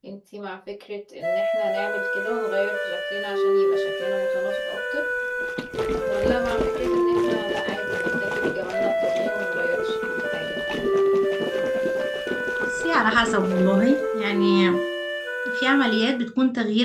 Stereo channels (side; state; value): both; identical; correlation 1.00